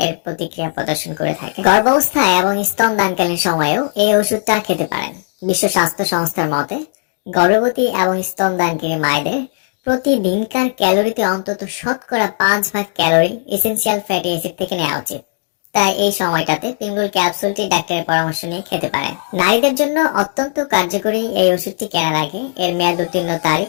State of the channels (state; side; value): silent; right; digital silence